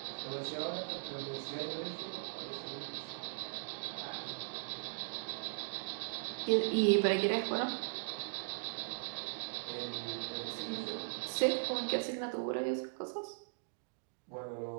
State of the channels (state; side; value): silent; left; digital silence